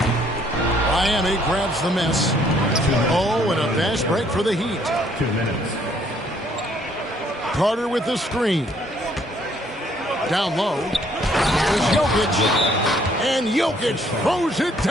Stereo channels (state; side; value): normal; both; correlation 0.65